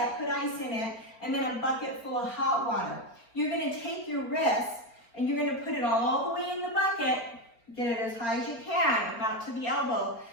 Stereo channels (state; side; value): late; right; 4.4 ms